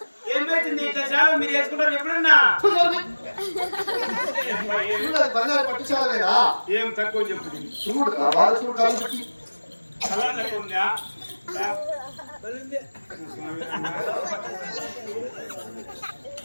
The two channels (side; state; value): both; inverted; correlation -1.00